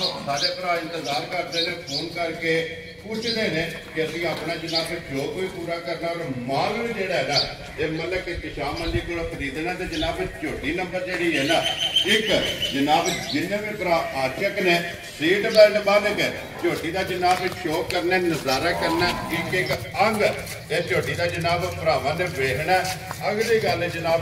ਸਾਡੇ ਭਰਾ ਇੰਤਜ਼ਾਰ ਕਰਦੇ ਨੇ, ਫੋਨ ਕਰਕੇ ਪੁੱਛਦੇ ਨੇ ਕਿ ਅਸੀਂ ਆਪਣਾ ਜਨਾਬ ਜੋ ਕੋਈ ਪੂਰਾ ਕਰਨਾ ਔਰ ਮਾਲ ਵੀ ਜਿਹੜਾ ਹੈ ਨਾ ਇਹ ਮਤਲਬ ਕਿ ਕਿਸ਼ਾਮ ਮੰਡੀ ਕੋਲ ਖਰੀਦਣਾ ਤੇ ਜਨਾਬ ਝੋਟੀ ਨੰਬਰ ਜਿਹੜੀ ਹੈ ਨਾ ਇੱਕ ਜਨਾਬ ਜਿੰਨੇ ਵੀ ਭਰਾ ਆਸ਼ਕ ਨੇ ਸੀਟ ਬੈਲਟ ਬੰਨ ਕੇ ਝੋਟੀ ਦਾ ਜਨਾਬ ਸ਼ੋਅ ਕਰਨਾ, ਨਜ਼ਾਰਾ ਕਰਨਾ, ਇੱਕ ਇੱਕ ਅੰਗ ਇਹ ਝੋਟੀ ਦਾ ਜਨਾਬ ਭਰਾਵਾਂ ਨੇ ਵੇਖਣਾ। ਅਗਲੀ ਗੱਲ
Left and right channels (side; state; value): both; identical; correlation 1.00